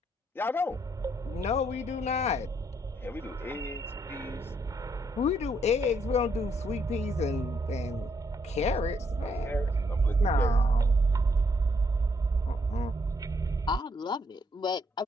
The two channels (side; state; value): both; normal; correlation 0.73